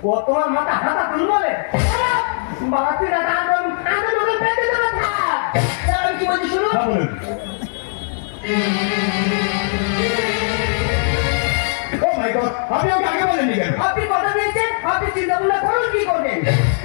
ও তোমার মাথা হাতা তুলবে বাবা। তুই দাদা আদর পেতে দেবে থাক, আমি কি বলছি শুনো। আপনি আমাকে আগে বলেননি কেন? আপনি কথা দিয়েছেন, আপনি চিন্তা ভাবনা করুন কি করবেন।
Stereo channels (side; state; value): right; silent; digital silence